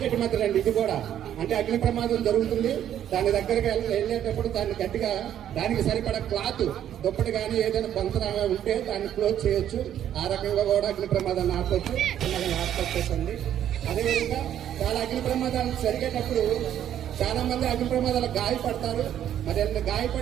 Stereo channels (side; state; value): left; quieter; 10.6 dB